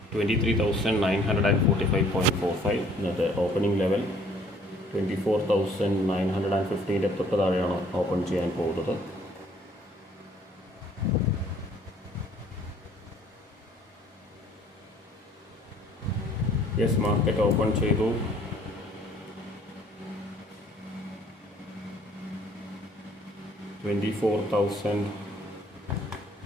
23,945.45 ഇന്നത്തെ ഓപ്പണിംഗ് ലെവൽ. 24,915 തൊട്ട് താഴെയാണ് ഓപ്പൺ ചെയ്യാൻ പോകുന്നത്. യെസ്, മാർക്കറ്റ് ഓപ്പൺ ചെയ്തു. $24,000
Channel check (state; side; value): normal; both; correlation 0.58